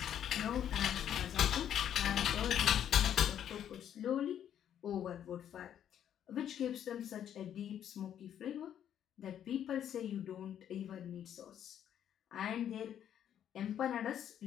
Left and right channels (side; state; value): right; quieter; 9.9 dB